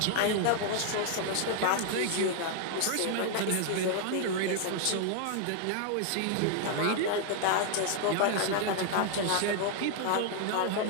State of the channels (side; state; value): both; different; correlation 0.00